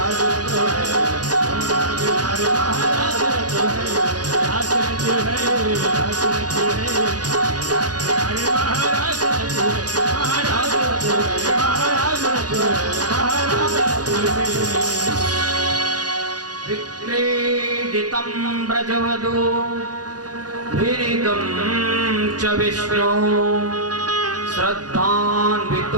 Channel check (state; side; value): late; left; 0.69 ms